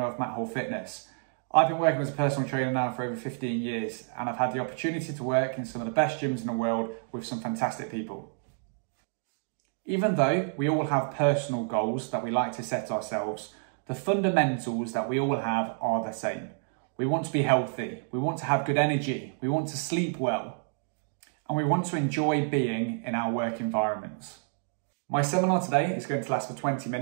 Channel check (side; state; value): left; silent; digital silence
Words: of Matt Hall Fitness. I've been working as a personal trainer now for over 15 years and I've had the opportunity to work in some of the best gyms in the world with some fantastic people. Even though we all have personal goals that we like to set ourselves, the fundamentals that we all have are the same. We want to be healthy, we want to have good energy, we want to sleep well, and we want to enjoy being in our work environments. My seminar today is going to last for 20